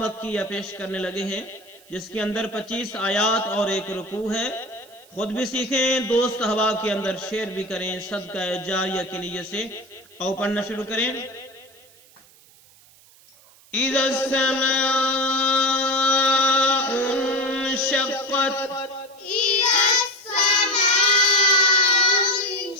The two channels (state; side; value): noise; right; hiss, 27 dB below the sound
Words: مکیہ پیش کرنے لگے ہیں، جس کے اندر 25 آیات اور ایک رکوع ہے۔ خود بھی سیکھیں، دوست احباب کے اندر شیئر بھی کریں صدقہ جاریہ کے نیت سے۔ اور پڑھنا شروع کریں۔ اذا السماء انشقت،